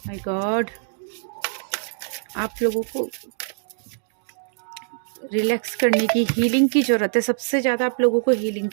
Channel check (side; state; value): left; silent; digital silence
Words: my God, आप लोगों को रिलैक्स करने की, हीलिंग की ज़रूरत है। सबसे ज़्यादा आप लोगों को हीलिंग